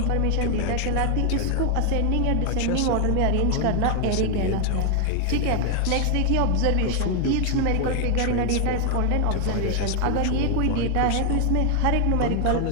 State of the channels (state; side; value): different; both; correlation 0.00